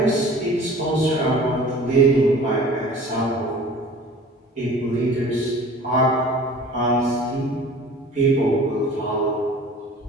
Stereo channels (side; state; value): both; normal; correlation 0.44